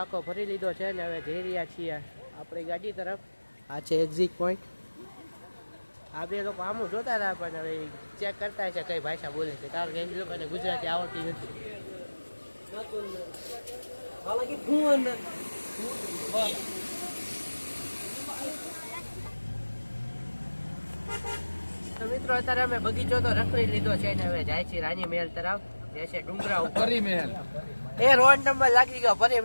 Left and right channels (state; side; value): inverted; both; correlation -1.00